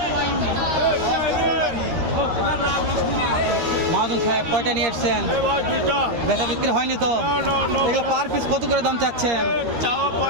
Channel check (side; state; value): left; late; 13 ms